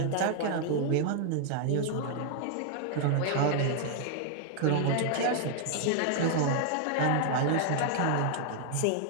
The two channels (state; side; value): different; both; correlation 0.00